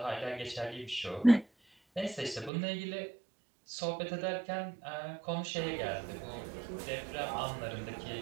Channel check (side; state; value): left; drops out; at 2.5 s